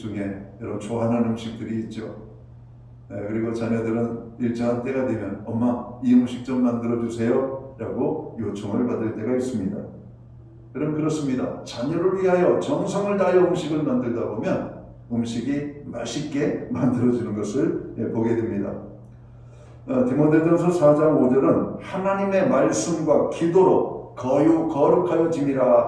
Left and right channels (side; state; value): both; identical; correlation 1.00